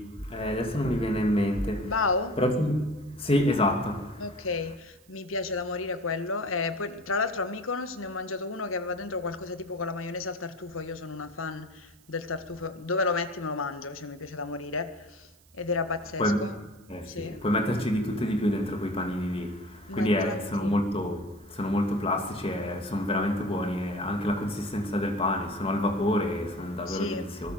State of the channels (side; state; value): right; noise; hiss, 29 dB below the sound